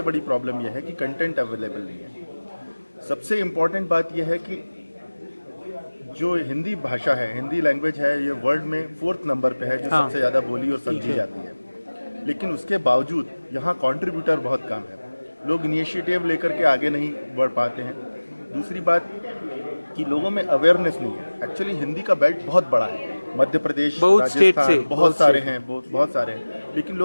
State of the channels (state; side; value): inverted; both; correlation -1.00